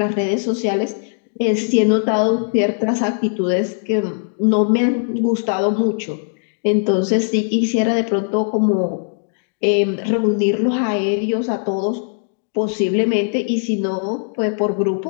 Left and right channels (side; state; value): right; silent; digital silence